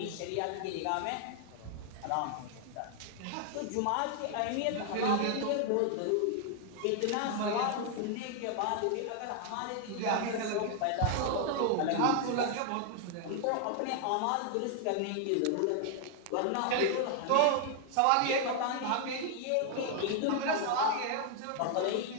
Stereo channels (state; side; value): different; both; correlation 0.00